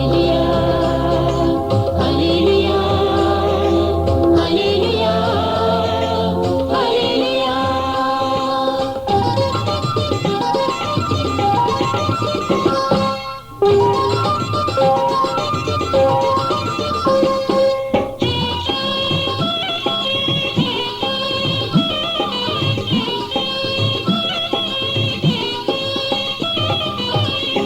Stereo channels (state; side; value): identical; both; correlation 1.00